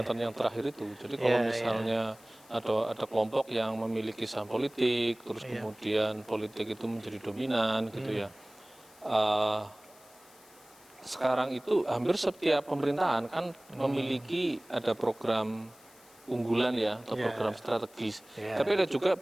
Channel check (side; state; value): left; noise; hiss, 26 dB below the sound